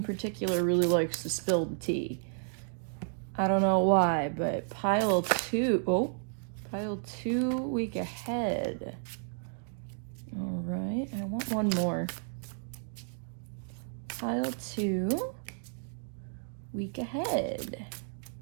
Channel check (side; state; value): left; silent; digital silence